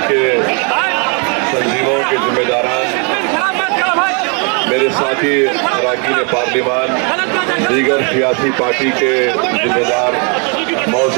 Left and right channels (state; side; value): quieter; left; 36.5 dB